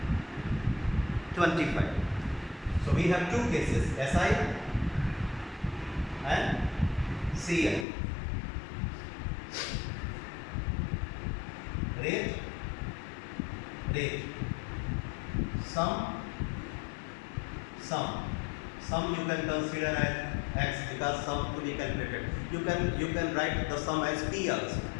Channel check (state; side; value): drops out; right; at 7.9 s